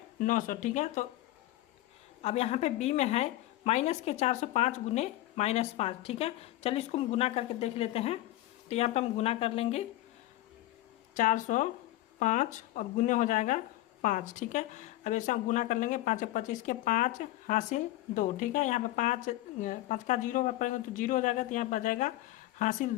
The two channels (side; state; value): right; quieter; 16.0 dB